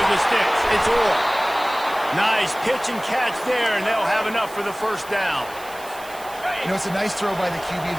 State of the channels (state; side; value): noise; right; hiss, 18 dB below the sound